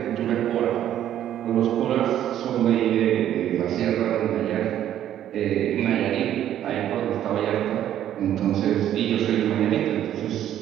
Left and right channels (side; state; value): left; quieter; 11.3 dB